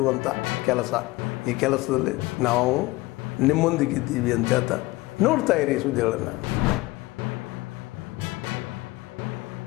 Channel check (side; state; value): right; quieter; 20.6 dB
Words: ಕೆಲಸ. ಈ ಕೆಲಸದಲ್ಲಿ ನಾವು ನಿಮ್ಮೊಂದಿಗಿದ್ದೀವಿ ಅಂತ ಹೇಳ್ತಾ ನೋಡ್ತಾ ಇರಿ ಈ ಸುದ್ದಿಗಳನ್ನು.